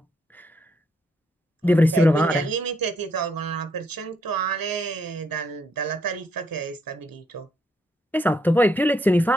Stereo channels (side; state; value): both; normal; correlation 0.75